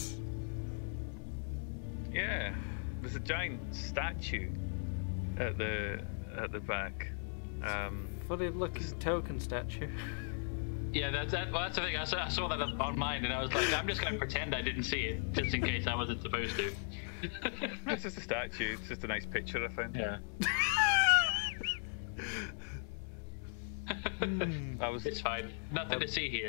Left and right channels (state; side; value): silent; right; 53 dB below the other